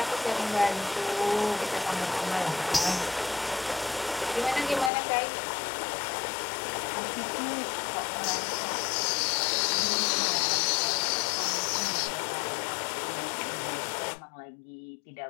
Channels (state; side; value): drops out; right; at 4.9 s